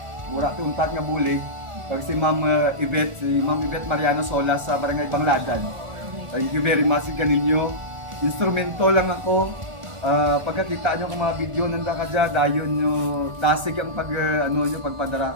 mura tuntat nga bulig. Pag si Ma'am Yvette Mariano Solas sa Barangay Bangladan. Thank you very much kaninyo. Instrumento lang ako. Pagkakita nyo kung mga video nanda ka dyan, dayon nyo, dasig ang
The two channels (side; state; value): left; late; 1.4 ms